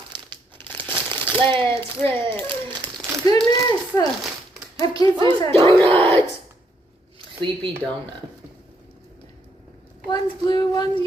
Let's rip. Goodness. I have kids who said Donuts! Sleepy Donut. one's blue, one's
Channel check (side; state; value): both; normal; correlation 0.73